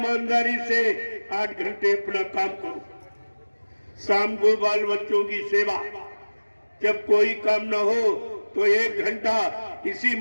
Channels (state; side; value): inverted; both; correlation -1.00